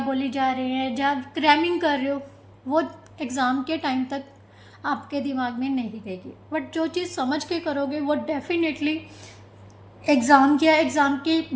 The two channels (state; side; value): identical; both; correlation 1.00